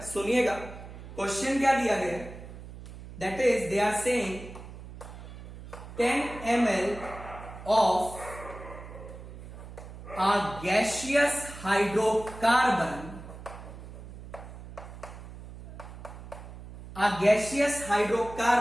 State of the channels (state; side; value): noise; right; hum, 14 dB below the sound